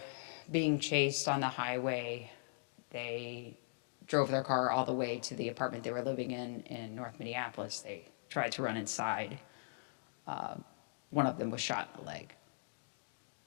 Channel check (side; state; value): right; silent; digital silence